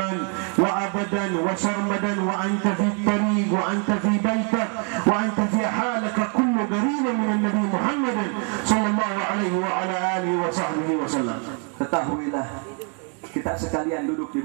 وأبدا وسرمدا، وأنت في الطريق وأنت في بيتك وأنت في حالك كل قريب من النبي محمد صلى الله عليه وعلى آله وصحبه وسلم. Ketahuilah, kita sekalian duduk di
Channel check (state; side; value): quieter; left; 38.0 dB